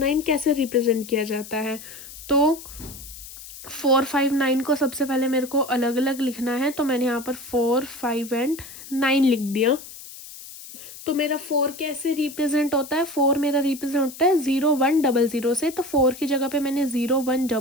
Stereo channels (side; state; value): left; noise; hiss, 15 dB below the sound